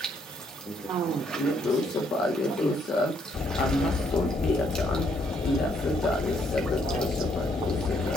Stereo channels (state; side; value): normal; both; correlation 0.70